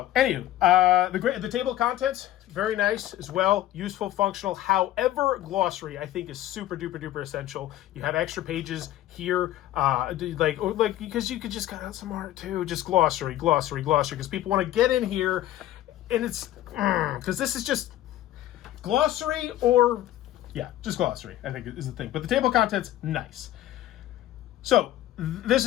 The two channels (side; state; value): right; quieter; 13.8 dB